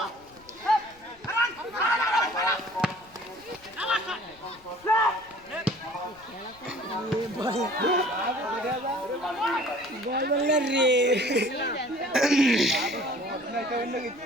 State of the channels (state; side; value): noise; left; rumble, 27 dB below the sound